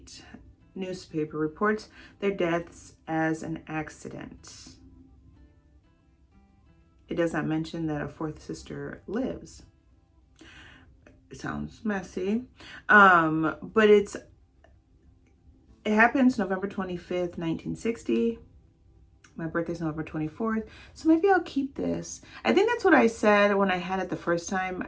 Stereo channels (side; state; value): both; identical; correlation 1.00